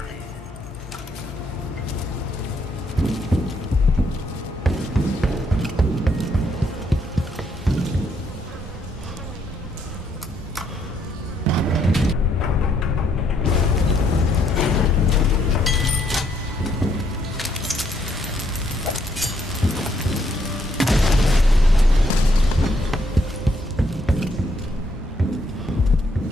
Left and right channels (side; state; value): both; normal; correlation 0.72